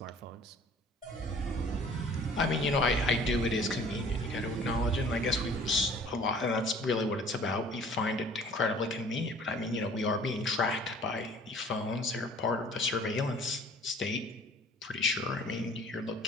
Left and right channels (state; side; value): normal; both; correlation 0.51